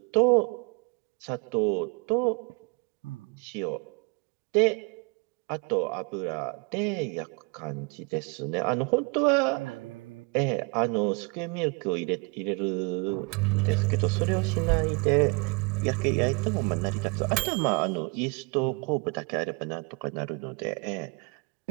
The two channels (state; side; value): quieter; left; 30.7 dB